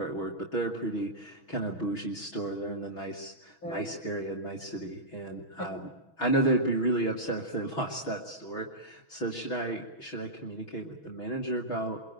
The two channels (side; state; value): right; late; 6.2 ms